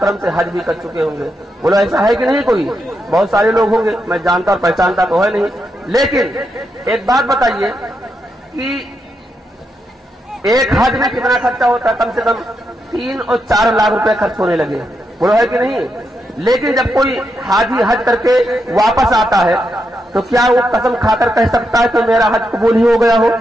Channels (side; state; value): both; normal; correlation 0.83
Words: سے حج بھی کر چکے ہوں گے، بولو ایسا ہے کہ نہیں؟ کوئی بہت سارے لوگ ہوں گے، میں جانتا اور پہچانتا تو ہے نہیں، لیکن ایک بات بتائیے کہ ایک حج میں کتنا خرچہ ہوتا ہے؟ کم سے کم 3 اور 4 لاکھ روپے خرچ ہونے لگے، بولو ہے کہ نہیں؟ لیکن جب کوئی حاجی حج کر کے واپس آتا ہے تو کیا وہ قسم کھا کر کہہ سکتا ہے کہ میرا حج قبول ہی ہو گیا ہو؟